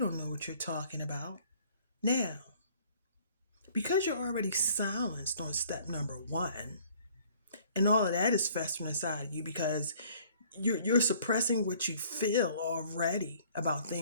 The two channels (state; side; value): inverted; both; correlation -0.56